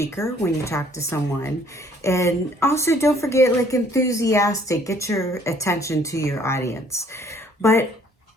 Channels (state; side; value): normal; both; correlation 0.60